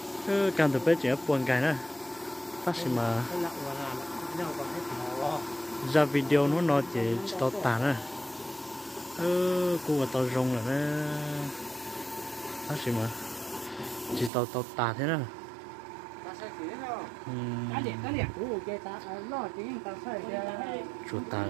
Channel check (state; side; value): drops out; left; at 14.3 s